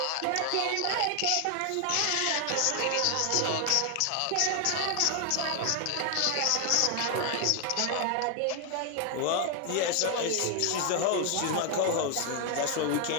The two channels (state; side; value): different; both; correlation 0.00